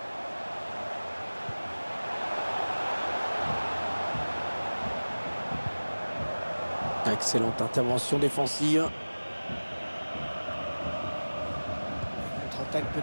Excellente intervention défensive. Contre-attaque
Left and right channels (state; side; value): inverted; both; correlation -1.00